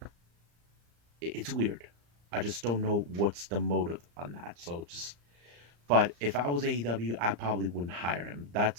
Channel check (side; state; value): left; late; 35 ms